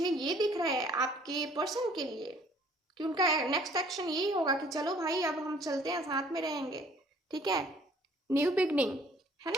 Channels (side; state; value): both; normal; correlation 0.57